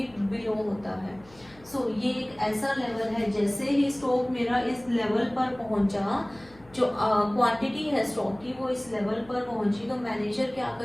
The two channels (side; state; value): left; noise; hum, 26 dB below the sound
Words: बिलो होता है। सो ये एक ऐसा लेवल है जैसे ही स्टॉक मेरा इस लेवल पर पहुंचा, जो क्वांटिटी है स्टॉक की वो इस लेवल पर पहुंची, तो मैनेजर क्या